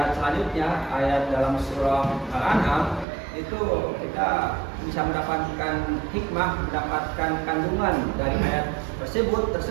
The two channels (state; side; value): drops out; left; at 3.1 s